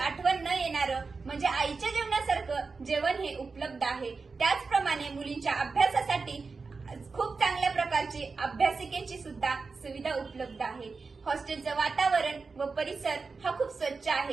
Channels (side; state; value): left; quieter; 4.4 dB